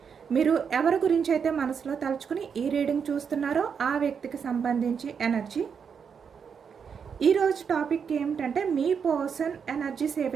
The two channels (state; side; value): quieter; left; 6.7 dB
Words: మీరు ఎవరి గురించి అయితే మనసులో తలుచుకుని ఈ రీడింగ్ చూస్తున్నారో ఆ వ్యక్తికి సంబంధించి ఎనర్జీ. ఈరోజు టాపిక్ ఏమిటంటే మీ పర్సన్ ఎనర్జీస్ ఏ